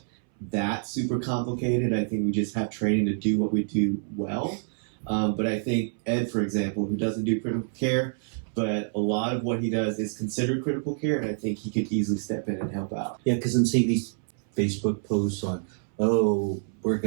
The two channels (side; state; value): left; silent; 60 dB below the other